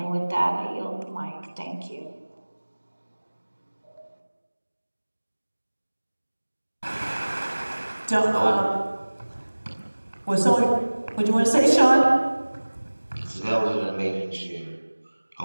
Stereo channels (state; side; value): inverted; both; correlation -1.00